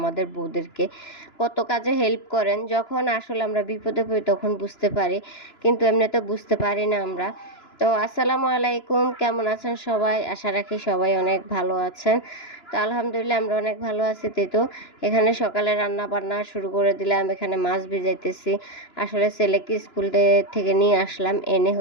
বউদেরকে, কত কাজে হেল্প করেন। যখন আসলে আমরা বিপদে পড়ি তখন বুঝতে পারি, কিন্তু এমনিতে বুঝতে পারি না আমরা। তো আসসালামু আলাইকুম, কেমন আছেন সবাই? আশা রাখি সবাই অনেক ভালো আছেন। তো আলহামদুলিল্লাহ আমরা অনেক ভালো আছি। তো এখানে সকালে রান্না বান্না শুরু করে দিলাম, এখানে মাছ ভিজাইতেছি। আসলে ছেলেকে স্কুল থেকে নিয়ে আসলাম, এনে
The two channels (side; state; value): right; late; 2.9 ms